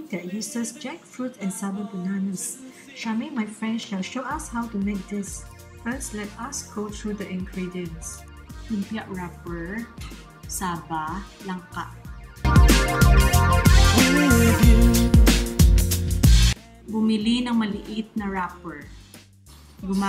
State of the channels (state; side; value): identical; both; correlation 1.00